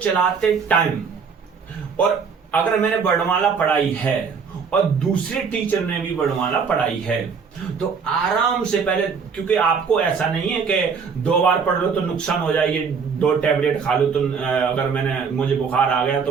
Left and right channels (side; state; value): left; quieter; 5.9 dB